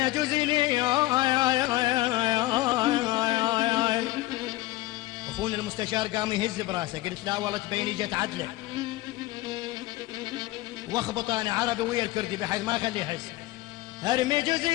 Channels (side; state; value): right; quieter; 17.8 dB